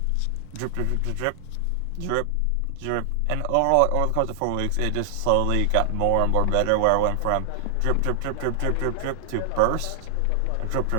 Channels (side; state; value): both; different; correlation 0.00